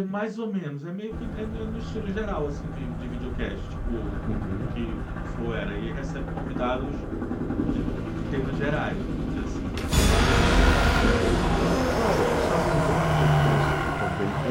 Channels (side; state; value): both; identical; correlation 1.00